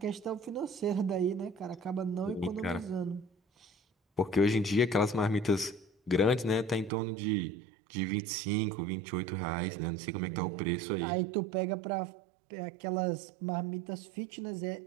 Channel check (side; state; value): left; drops out; at 6.9 s